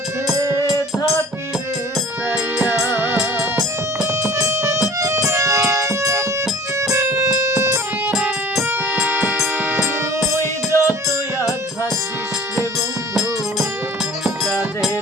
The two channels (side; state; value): both; normal; correlation 0.46